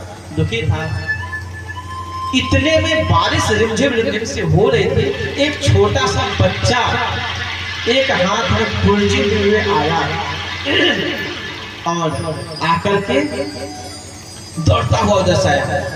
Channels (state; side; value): identical; both; correlation 1.00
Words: दुखी था। इतने में बारिश रिमझिम रिमझिम से हो रही थी। एक छोटा सा बच्चा एक हाथ में कुर्जी लिए आया और आकर के दौड़ता हुआ उधर से आया,